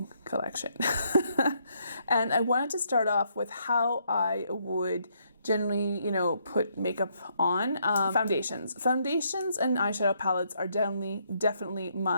collection. And I wanted to start off with how I would generally, put makeup on. Foundations. Foundations and eyeshadow palettes are definitely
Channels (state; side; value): inverted; both; correlation -0.73